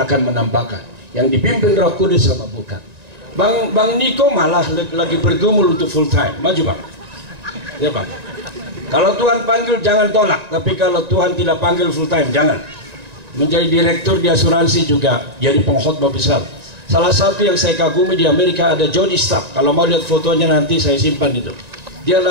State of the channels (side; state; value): left; late; 1.9 ms